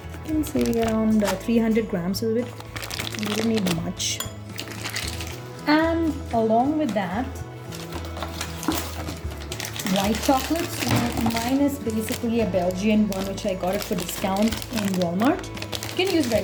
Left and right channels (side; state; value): both; identical; correlation 1.00